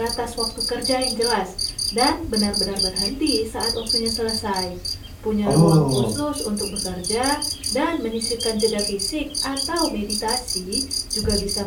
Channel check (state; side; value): identical; both; correlation 1.00